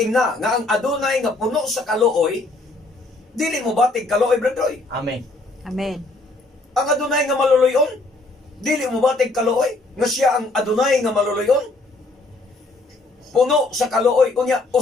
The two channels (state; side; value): quieter; right; 3.1 dB